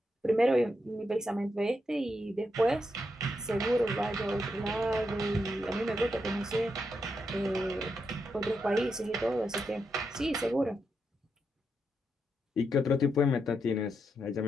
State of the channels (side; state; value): both; normal; correlation 0.83